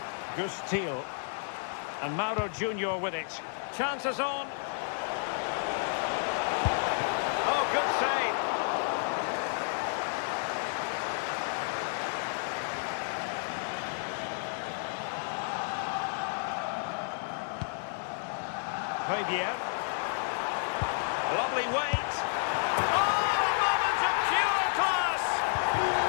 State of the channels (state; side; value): silent; right; digital silence